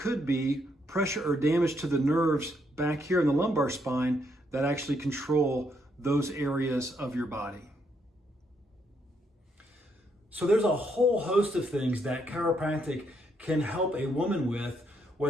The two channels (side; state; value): both; normal; correlation 0.75